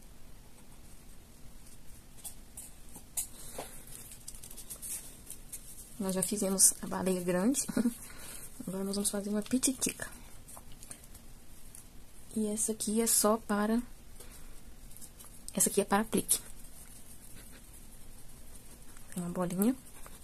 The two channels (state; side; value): identical; both; correlation 1.00